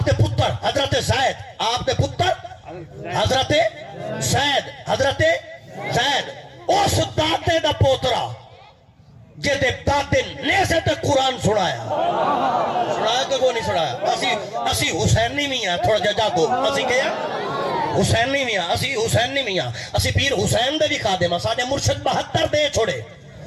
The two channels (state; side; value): identical; both; correlation 1.00